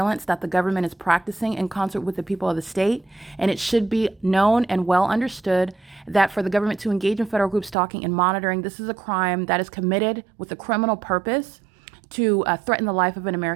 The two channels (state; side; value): drops out; left; at 7.8 s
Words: that the government is practicing in concert with the people of the state, and it should be known and well understood that for the government to engage in federal group stalking and monitoring, this is a crime that is committed with a criminal purpose to threaten the life of an